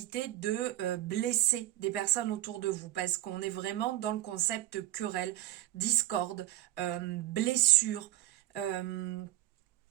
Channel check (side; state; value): left; quieter; 15.0 dB